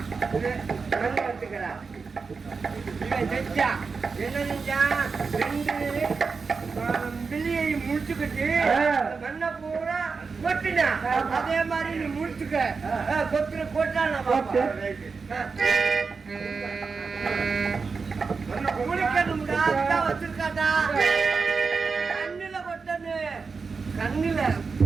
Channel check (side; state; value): left; quieter; 4.8 dB